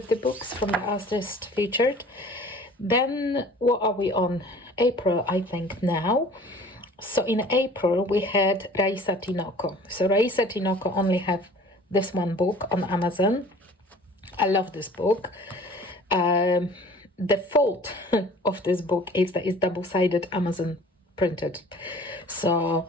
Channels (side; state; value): both; normal; correlation 0.48